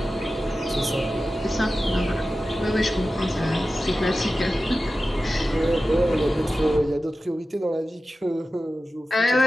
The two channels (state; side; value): normal; both; correlation 0.94